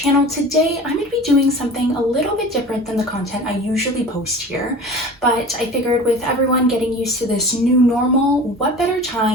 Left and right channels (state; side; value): normal; both; correlation 0.38